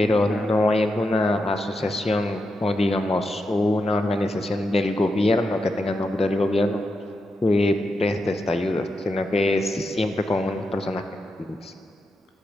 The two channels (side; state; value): both; normal; correlation 0.86